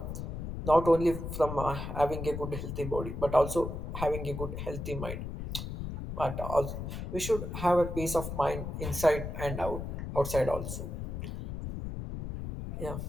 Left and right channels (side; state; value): left; noise; rumble, 6 dB below the sound